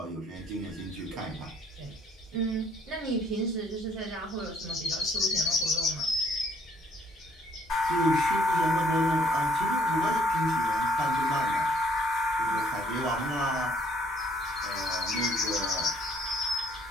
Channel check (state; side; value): normal; both; correlation 0.63